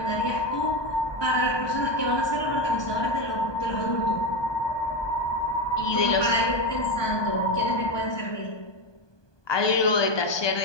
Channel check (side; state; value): right; late; 1.2 ms